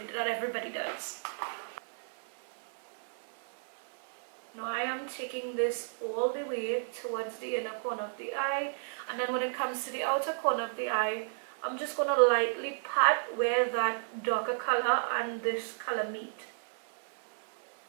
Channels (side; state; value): left; silent; 56 dB below the other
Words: that everybody does. Now I am taking this all the way towards the inner corner of the eye, and then when it comes to the outer corner of the eye, I'm just going to lightly pat where that darker color and this color meet.